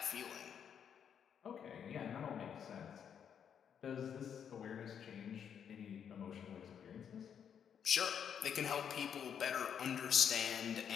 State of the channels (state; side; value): quieter; right; 8.1 dB